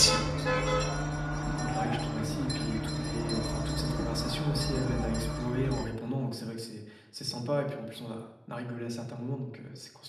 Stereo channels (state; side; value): identical; both; correlation 1.00